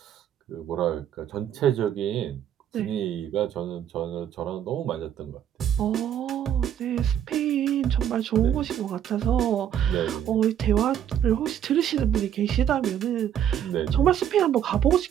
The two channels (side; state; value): left; quieter; 9.9 dB